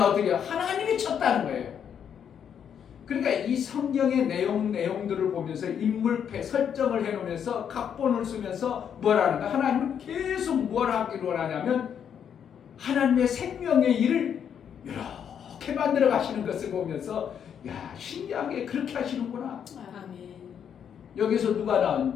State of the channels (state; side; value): quieter; right; 8.2 dB